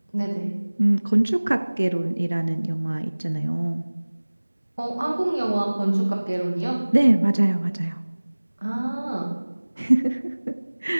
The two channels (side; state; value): both; inverted; correlation -1.00